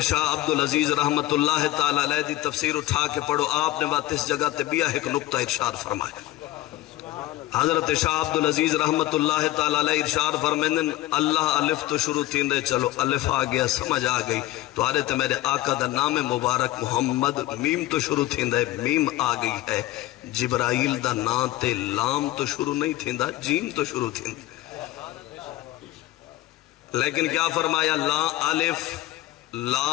شاہ عبدالعزیز رحمت اللہ تعالیٰ علیہ دی تفسیر اٹھا کے پڑھو، آپ نے بات اس جگہ تبیہ ایک نقطہ ارشاد فرمایا۔ حضرت شاہ عبدالعزیز رحمت اللہ تعالیٰ علیہ ارشاد فرمائیں اللہ الف تو شروع تین دے، چلو الف آ گیا سمجھ آ گئی تو آرے تے میرے آقا دا نام مبارک محمد، میم تو شروع تین دے، میم آ گئی ہے، جبرائیل دا نام تے لام تو شروع نہیں تین دا، جیم تو شروع تین دے۔ لیکن کیا فرمایا؟ لا الف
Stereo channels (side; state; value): right; quieter; 16.4 dB